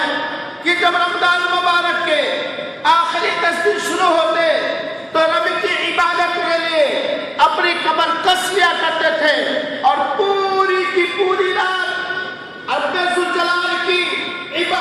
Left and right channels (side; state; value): both; identical; correlation 1.00